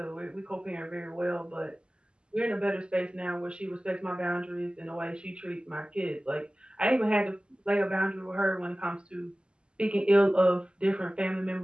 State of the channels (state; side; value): late; left; 0.049 ms